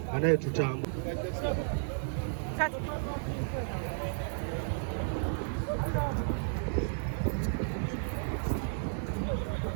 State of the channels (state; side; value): silent; left; digital silence